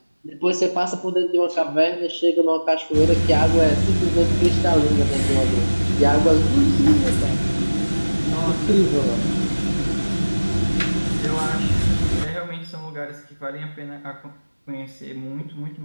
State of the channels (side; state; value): both; inverted; correlation -1.00